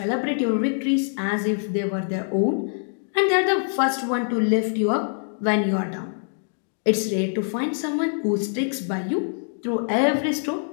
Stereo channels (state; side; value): silent; right; digital silence